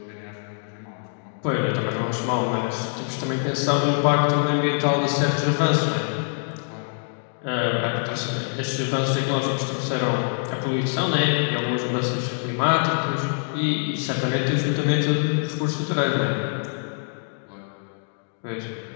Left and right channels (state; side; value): silent; right; 62 dB below the other